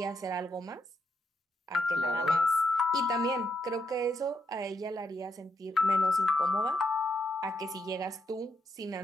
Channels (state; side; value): normal; both; correlation 0.79